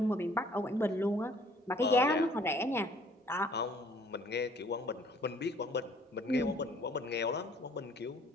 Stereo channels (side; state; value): both; normal; correlation 0.58